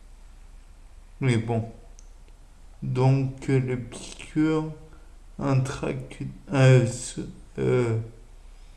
Mais bon, donc le piqûre intracu- euh, euh,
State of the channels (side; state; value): both; identical; correlation 1.00